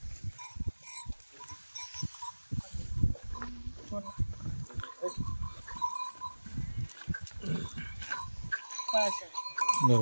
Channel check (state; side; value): inverted; both; correlation -1.00